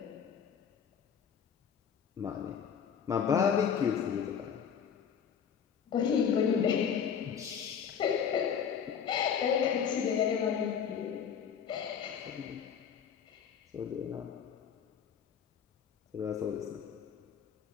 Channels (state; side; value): quieter; right; 7.6 dB